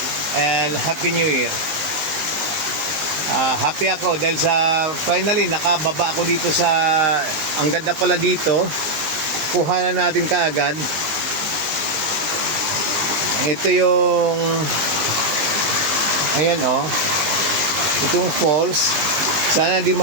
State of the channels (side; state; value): left; late; 20 ms